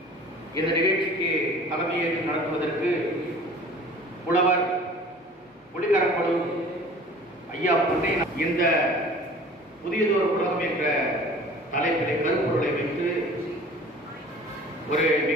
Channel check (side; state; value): both; normal; correlation 0.45